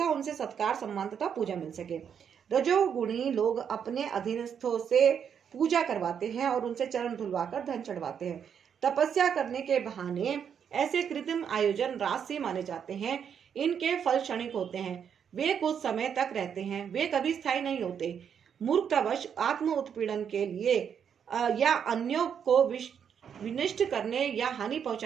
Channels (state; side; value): quieter; left; 7.8 dB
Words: उनसे सत्कार, सम्मान तथा पूजा मिल सके। रजोगुणी लोग अपने अधीनस्थों से पूजा करवाते हैं और उनसे चरण धुलवाकर धन चढ़वाते हैं। तपस्या करने के बहाने ऐसे कृत्रिम आयोजन राजसी माने जाते हैं। इनके फल क्षणिक होते हैं, वे कुछ समय तक रहते हैं, वे कभी स्थायी नहीं होते। मूर्खतावश आत्म उत्पीड़न के लिए या अन्यों को विनष्ट करने या हानि